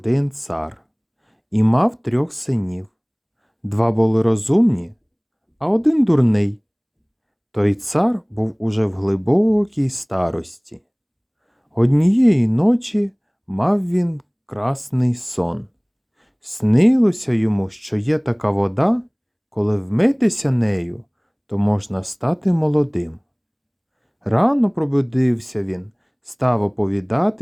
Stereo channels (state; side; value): identical; both; correlation 1.00